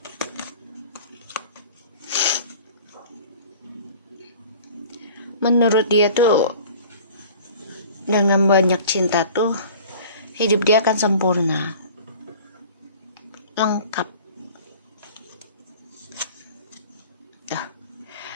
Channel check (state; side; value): inverted; both; correlation -0.44